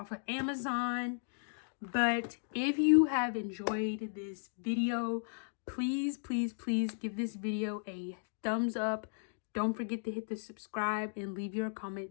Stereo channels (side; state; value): right; silent; digital silence